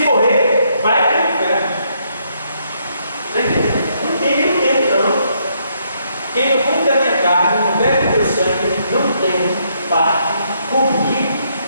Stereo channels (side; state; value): both; inverted; correlation -0.73